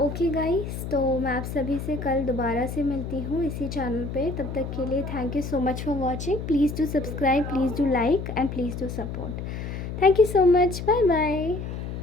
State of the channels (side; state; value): left; noise; hum, 6 dB below the sound